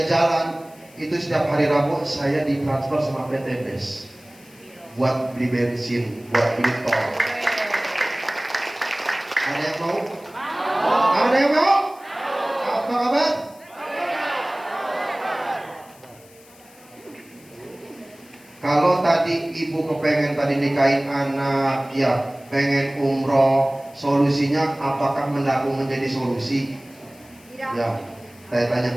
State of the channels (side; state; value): left; noise; hiss, 25 dB below the sound